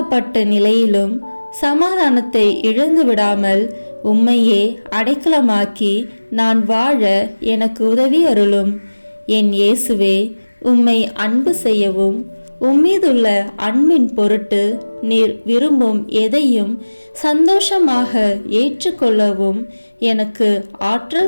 நிலையிலும் சமாதானத்தை இழந்து விடாமல் உம்மையே அடைக்கலமாக்கி நான் வாழ எனக்கு உதவி அருளும். என் இயேசுவே, உம்மை அன்பு செய்யவும் உம்மீதுள்ள அன்பின் பொருட்டு நீர் விரும்பும் எதையும் சந்தோஷமாக ஏற்றுக்கொள்ளவும் எனக்கு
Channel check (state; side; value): inverted; both; correlation -1.00